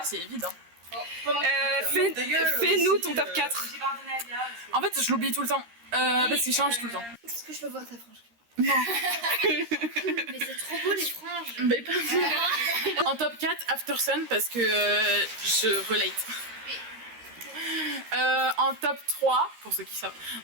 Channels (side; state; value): left; late; 13 ms